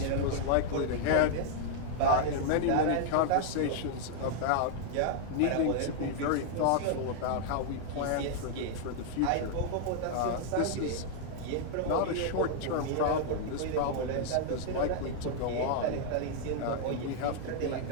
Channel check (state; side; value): different; both; correlation -0.01